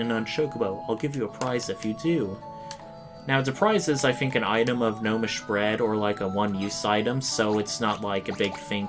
on Chocobo. I'll give you a prize if you do. Now, the prize is, I think, an item of gnomish bread, or like a one-use item, so it's not like a big thing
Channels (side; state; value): both; identical; correlation 1.00